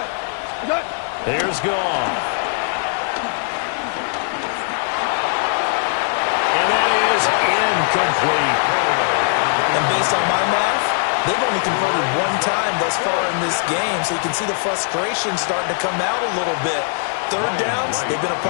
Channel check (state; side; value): silent; right; digital silence